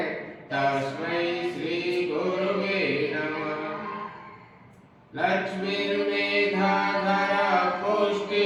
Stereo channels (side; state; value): both; identical; correlation 1.00